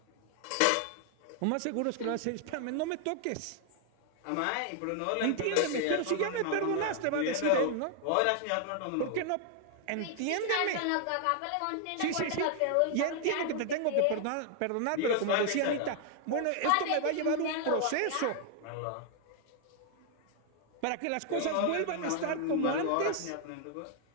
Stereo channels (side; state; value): both; different; correlation 0.00